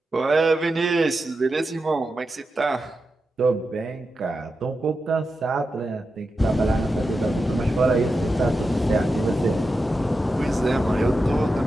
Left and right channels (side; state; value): both; normal; correlation 0.89